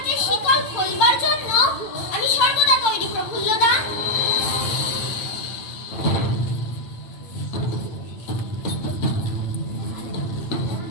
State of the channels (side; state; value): right; late; 8.8 ms